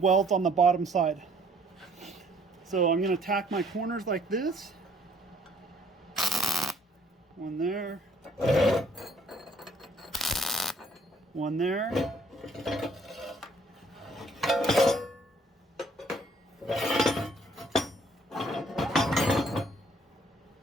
on the bottom side. So I'm going to tack my corners like this. One there. One there.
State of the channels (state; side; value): normal; both; correlation 0.62